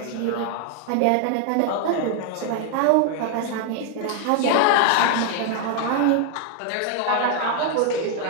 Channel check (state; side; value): different; both; correlation 0.00